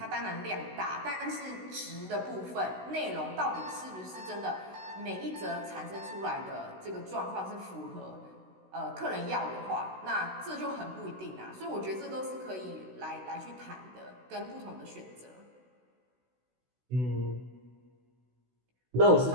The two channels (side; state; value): left; late; 16 ms